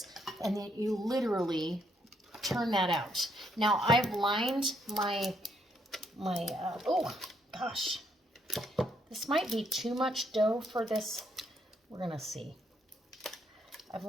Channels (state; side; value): normal; both; correlation 0.73